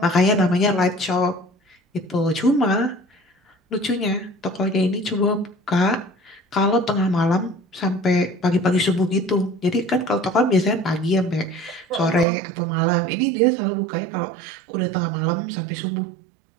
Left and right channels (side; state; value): left; drops out; at 12.2 s